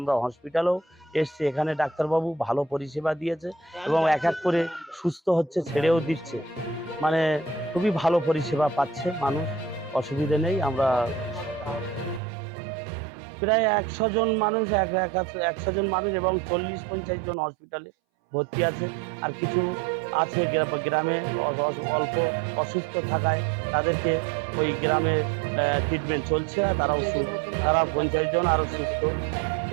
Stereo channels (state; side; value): drops out; left; at 12.2 s